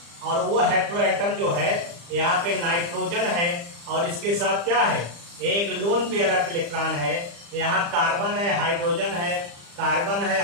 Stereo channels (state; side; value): late; left; 35 ms